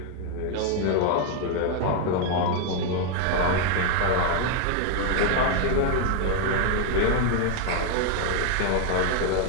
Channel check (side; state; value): both; different; correlation 0.01